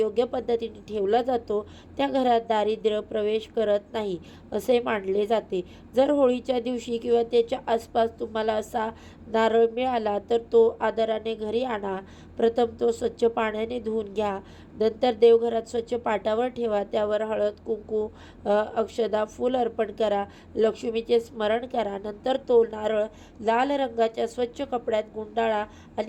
पद्धतीने ठेवला जातो त्या घरात दारिद्र्य प्रवेश करत नाही असे मानले जाते. जर होळीच्या दिवशी किंवा त्याच्या आसपास तुम्हाला असा नारळ मिळाला तर तो आदराने घरी आणा. प्रथम तो स्वच्छ पाण्याने धुवून घ्या. नंतर देवघरात स्वच्छ पाटावर ठेवा. त्यावर हळद, कुंकू, अक्षदा, फूल अर्पण करा. लक्ष्मीचे स्मरण करा. नंतर तो नारळ लाल रंगाच्या स्वच्छ कपड्यात गुंडाळा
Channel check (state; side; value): identical; both; correlation 1.00